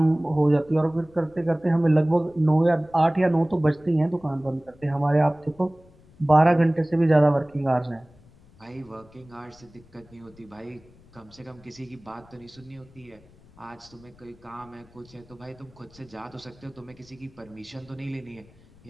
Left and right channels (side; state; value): left; noise; rumble, 26 dB below the sound